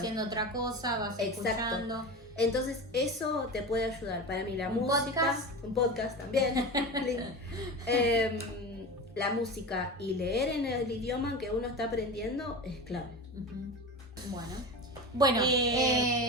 otra cosa, vas Exacto. escuchando. Entonces eso te puede ayudar. Para mí la ¿Un música, un podcast también, la música y leer en el idioma que uno está aprendiendo es clave. Ujú. Bueno,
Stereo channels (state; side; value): normal; both; correlation 0.27